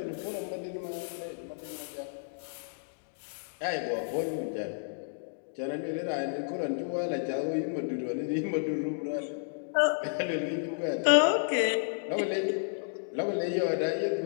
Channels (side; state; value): right; silent; digital silence